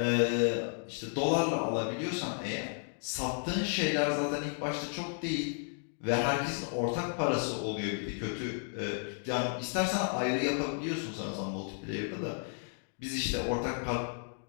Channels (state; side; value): silent; right; 56 dB below the other